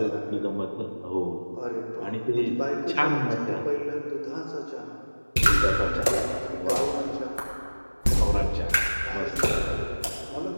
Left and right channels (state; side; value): inverted; both; correlation -1.00